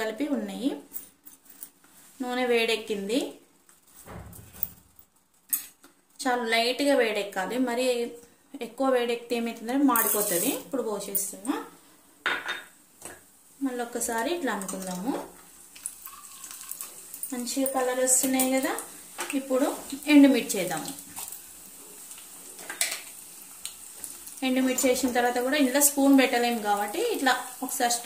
కలిపి ఉన్నాయి. నూనె వేడెక్కింది. చాలా లైట్గా వేడెక్కాలి, మరి ఎక్కువ వేడెక్కితే ఏమవుతుందంటే మాడిపోతుంది. ఇప్పుడు పోసేస్తున్నా. మళ్ళీ ఒక్కసారి ఇట్లా అనుకుందాము. మంచిగా కలర్ వస్తున్నాయి కదా. ఇప్పుడు ఎండుమిర్చి వేద్దాము. ఎండుమిర్చి వేసిన తర్వాత కూడా ఇంట్లో స్పూన్ పెట్టలేము కాబట్టి ఇట్లా ఒకసారి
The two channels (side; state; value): both; identical; correlation 1.00